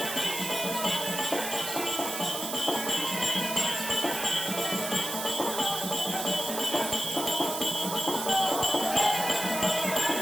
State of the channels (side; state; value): right; noise; hiss, 5 dB below the sound